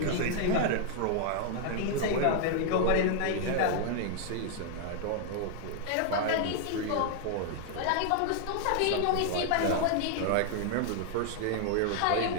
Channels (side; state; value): both; different; correlation 0.00